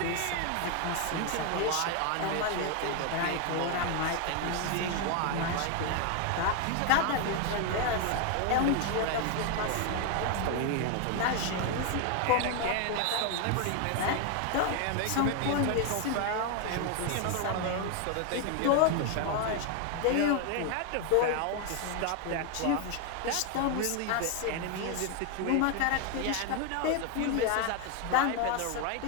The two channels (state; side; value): different; both; correlation 0.01